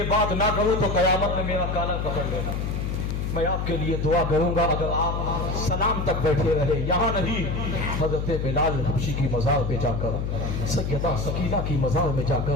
बात ना करूँ तो कयामत में मेरा काला पकड़ लेना। मैं आपके लिए दुआ करूंगा अगर आप सलाम तक बैठे रहे, यहाँ नहीं हजरत बिलाल हबशी की मज़ार पे जाकर, सैयदा सकीना की मज़ार में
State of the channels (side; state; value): left; noise; hum, 2 dB below the sound